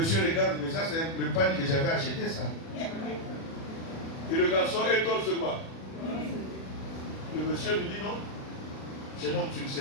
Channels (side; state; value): right; late; 36 ms